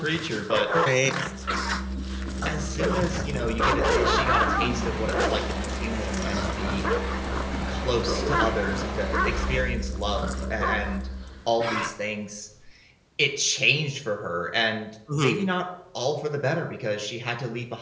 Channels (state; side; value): identical; both; correlation 1.00